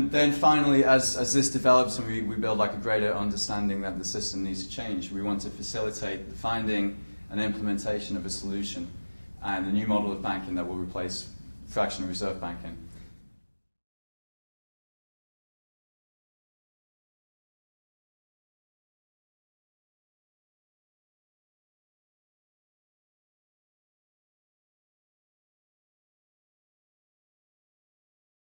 then finally, as this develops and we build like a greater understanding that the system needs to change, we want to facilitate the finding and implementation of a solution and a new model of banking that will replace fractional reserve banking.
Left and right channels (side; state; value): both; inverted; correlation -1.00